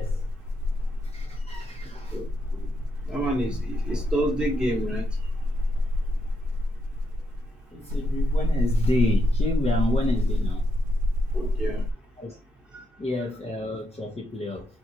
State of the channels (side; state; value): both; normal; correlation 0.81